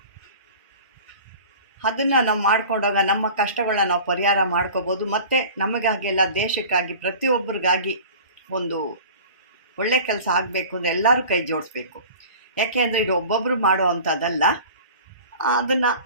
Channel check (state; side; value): inverted; both; correlation -0.41